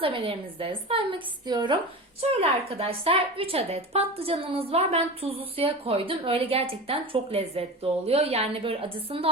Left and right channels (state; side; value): normal; both; correlation 0.29